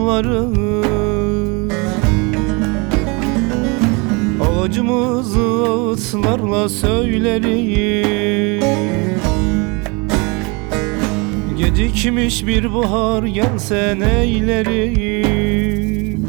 acımızı ağıtlarla söylerim. Gecikmiş bir bahar gelse neylerim.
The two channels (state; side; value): quieter; left; 29.3 dB